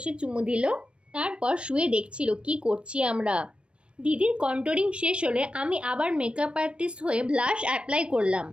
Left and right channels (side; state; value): left; late; 0.058 ms